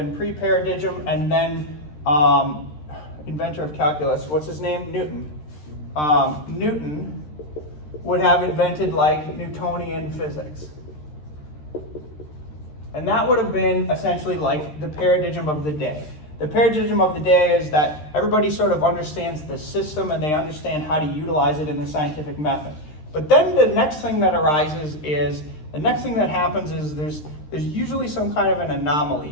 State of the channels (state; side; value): late; right; 13 ms